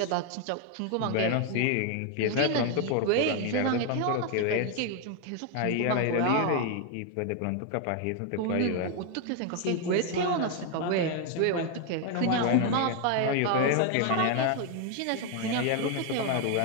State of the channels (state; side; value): different; both; correlation 0.01